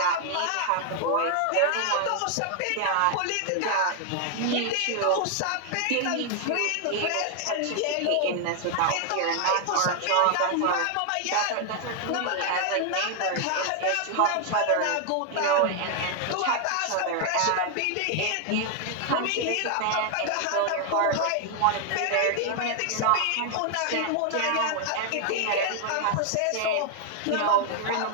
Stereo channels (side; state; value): both; different; correlation 0.00